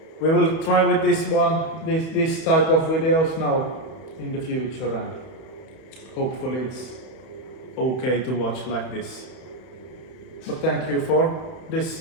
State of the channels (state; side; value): late; right; 31 ms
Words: we will try with this type of videos now in the future, and hopefully it's okay to watch like this. But thank you for